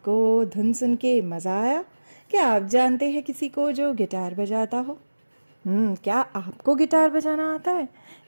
धुन सुन के मज़ा आया? क्या आप जानते हैं किसी को जो गिटार बजाता हो? क्या आपको गिटार बजाना आता है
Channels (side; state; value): both; inverted; correlation -1.00